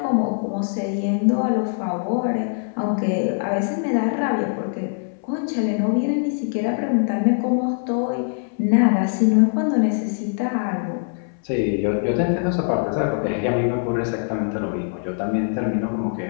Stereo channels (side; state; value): right; silent; 64 dB below the other